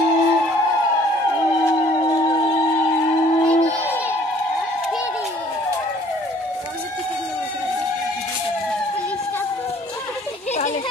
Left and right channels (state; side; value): normal; both; correlation 0.57